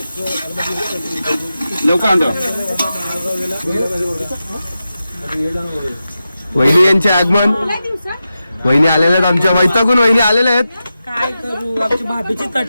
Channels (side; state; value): both; inverted; correlation -0.91